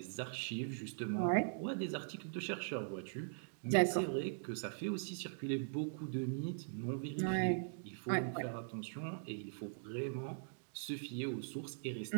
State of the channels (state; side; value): silent; left; digital silence